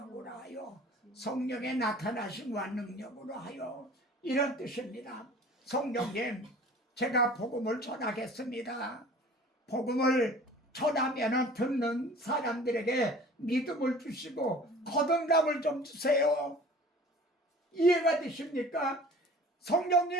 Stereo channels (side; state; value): both; normal; correlation 0.46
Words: 하여, 성령의 나타나심과 능력으로 하여, 이런 뜻입니다. 성령님, 제가 복음을 전하겠습니다. 복음을 전하면 듣는 사람들에게 믿음을 주시고 거듭남을 좀 주세요. 이해가 되십니까?